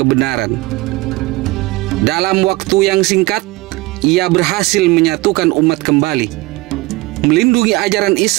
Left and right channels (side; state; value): left; quieter; 21.3 dB